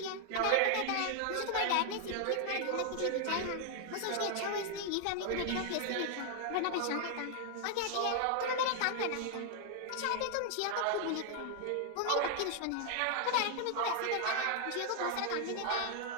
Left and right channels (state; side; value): different; both; correlation 0.00